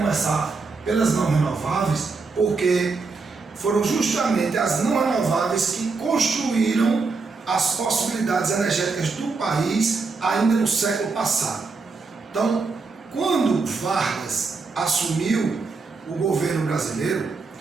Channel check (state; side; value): quieter; left; 4.3 dB